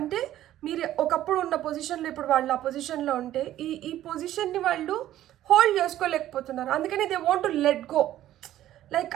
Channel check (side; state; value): left; quieter; 13.1 dB